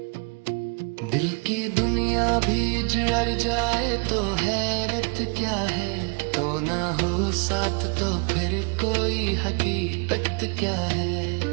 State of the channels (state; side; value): quieter; left; 32.9 dB